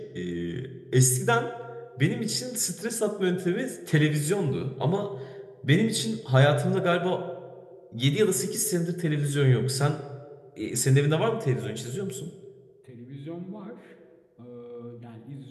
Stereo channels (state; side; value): identical; both; correlation 1.00